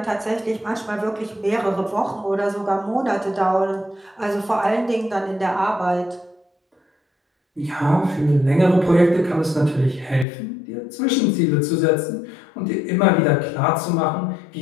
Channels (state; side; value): drops out; right; at 10.2 s